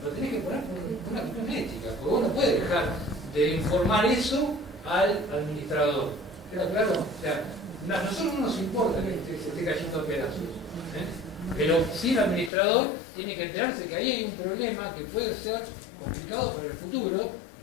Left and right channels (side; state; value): right; drops out; at 12.5 s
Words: lo tenés que poner por una cuestión ética, porque vos no puedes dejar de informar eso al administrador. ¿Queda claro? O sea, a nosotros no nos importa que se esté cayendo a pedazos, pero sí el administrador tiene que enterarse que ahí hay un problema que puede ser complicado para el futuro,